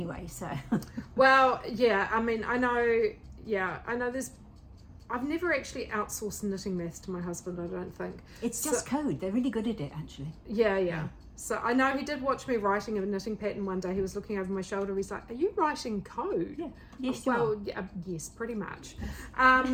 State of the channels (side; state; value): both; identical; correlation 1.00